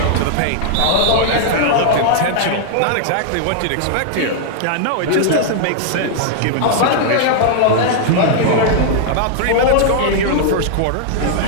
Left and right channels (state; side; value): different; both; correlation -0.01